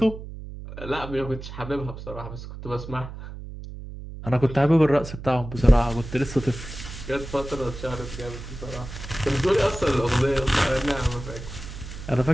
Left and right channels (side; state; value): right; noise; hum, 11 dB below the sound